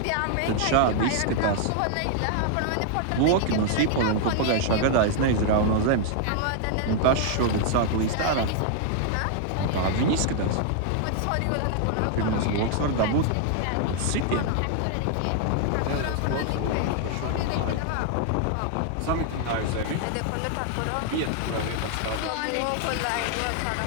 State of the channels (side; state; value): both; different; correlation -0.01